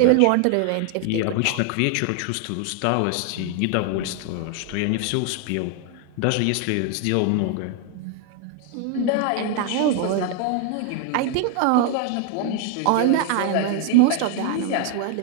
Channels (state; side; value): different; both; correlation 0.00